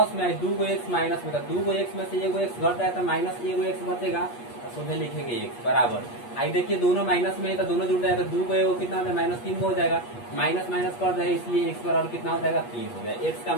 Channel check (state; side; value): late; right; 8.4 ms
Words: में दूगो एक्स माइनस में, तो दूगो एक्स में से एगो एक्स घट जाए तो माइनस एगो एक्स बचेगा, तो सीधे लिखेंगे एक्स बराबर। आई देखिए दोनों माइनस में है तो दोनों जुड़ जाएगा, दूगो एगो कितना हो जाएगा माइनस 3 हो जाएगा, माइनस माइनस कर जाएगा, इसलिए एक्स बराबर कितना हो जाएगा 3 हो गया। एक्स का